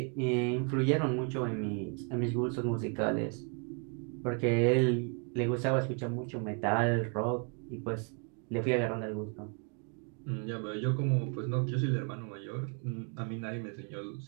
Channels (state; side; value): quieter; left; 37.2 dB